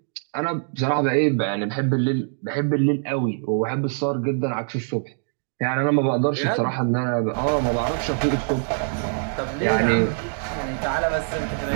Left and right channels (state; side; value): silent; left; digital silence